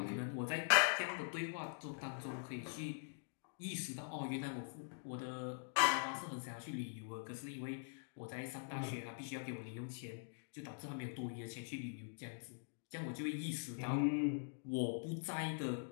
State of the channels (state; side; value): silent; right; digital silence